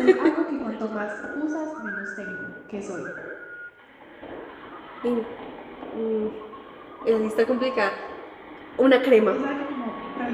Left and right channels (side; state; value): both; identical; correlation 1.00